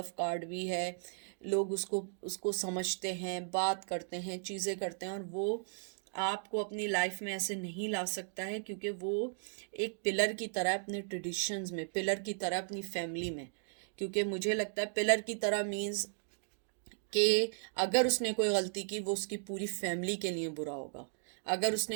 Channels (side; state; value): left; silent; digital silence